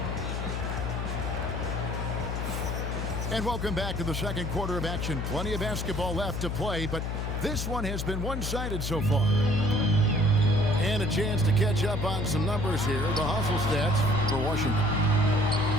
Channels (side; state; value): left; noise; hum, 3 dB below the sound